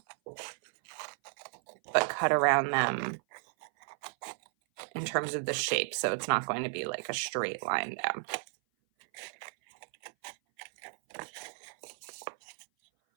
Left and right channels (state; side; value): silent; left; 55 dB below the other